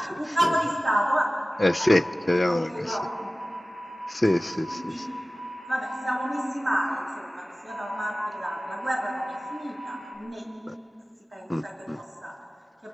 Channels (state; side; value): normal; both; correlation 0.97